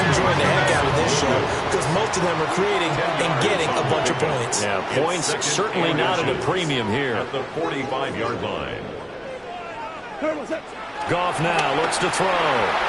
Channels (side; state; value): both; identical; correlation 1.00